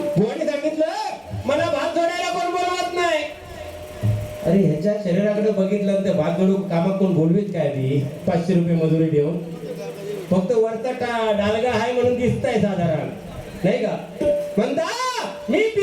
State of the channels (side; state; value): both; identical; correlation 1.00